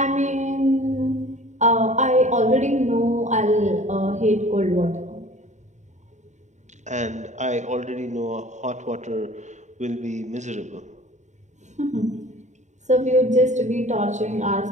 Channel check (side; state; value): left; late; 0.34 ms